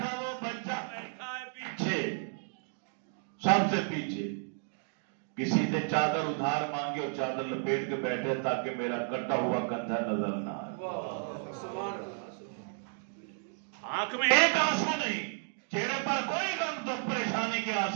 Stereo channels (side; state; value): left; silent; 56 dB below the other